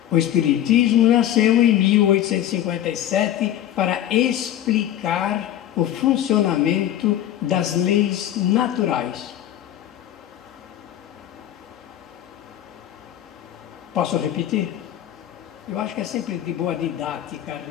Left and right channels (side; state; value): right; quieter; 11.8 dB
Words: o Espiritismo nasceu em 1857 para explicar o funcionamento das leis naturais. Posso repetir? Eu acho que é sempre de boa didática a